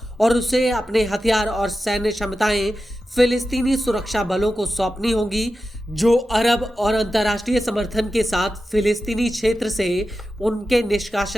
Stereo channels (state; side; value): normal; both; correlation 0.92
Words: और उसे अपने हथियार और सैन्य क्षमताएं फिलिस्तीनी सुरक्षा बलों को सौंपनी होंगी, जो अरब और अंतर्राष्ट्रीय समर्थन के साथ फिलिस्तीनी क्षेत्र से उनके